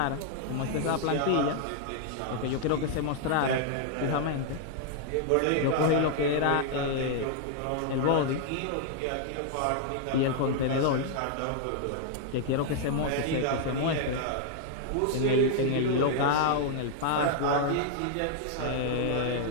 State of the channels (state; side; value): different; both; correlation 0.00